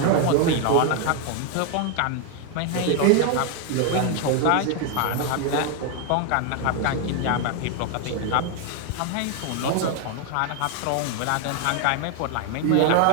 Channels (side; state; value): both; different; correlation 0.00